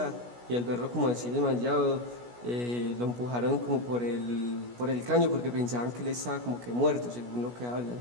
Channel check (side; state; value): left; late; 16 ms